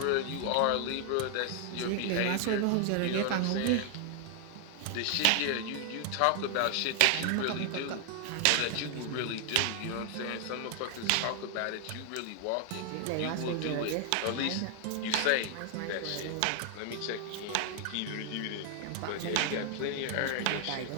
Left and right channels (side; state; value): both; different; correlation 0.00